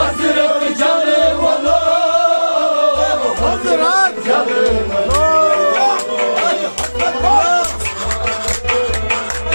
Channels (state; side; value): inverted; both; correlation -1.00